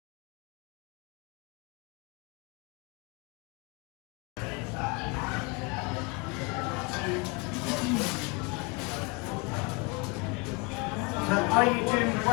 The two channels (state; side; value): quieter; right; 30.1 dB